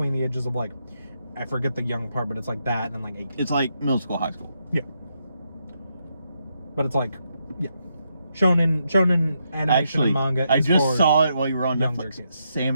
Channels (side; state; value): both; inverted; correlation -0.80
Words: the ages of like, I forget the young part, but it's like that and like 18. It's like middle school, high school. Yeah. But it's like, yeah. Shonen animation Actually, and manga I is just for saw it while you were on younger Netflix. kids.